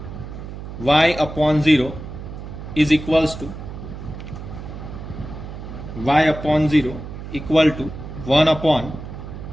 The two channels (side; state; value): right; noise; hum, 10 dB below the sound